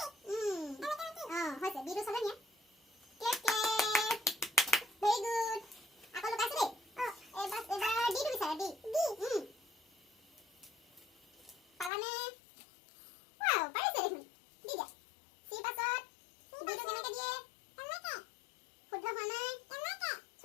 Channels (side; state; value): right; drops out; at 11.9 s